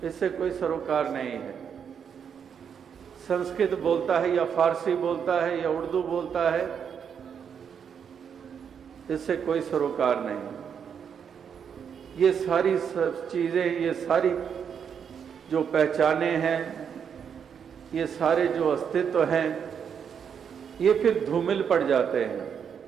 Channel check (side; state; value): left; quieter; 7.4 dB